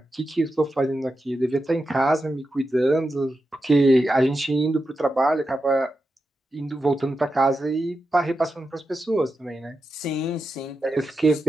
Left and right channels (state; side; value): normal; both; correlation 0.89